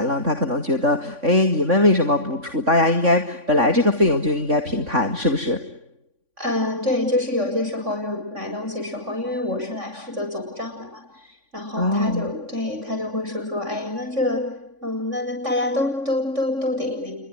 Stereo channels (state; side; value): late; left; 3.5 ms